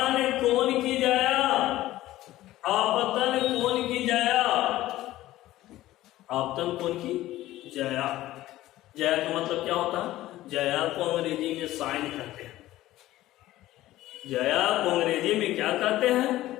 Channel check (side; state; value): right; quieter; 15.6 dB